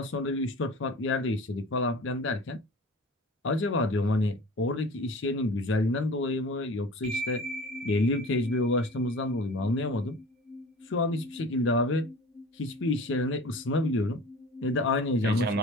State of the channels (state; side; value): normal; both; correlation 0.40